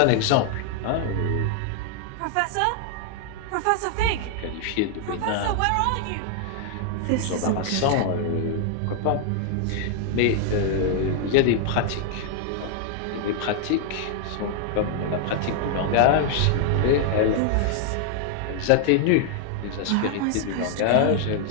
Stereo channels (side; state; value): both; different; correlation 0.00